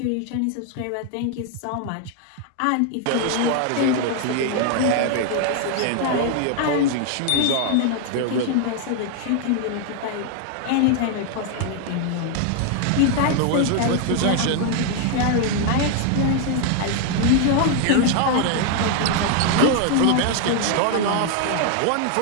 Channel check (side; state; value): both; different; correlation 0.00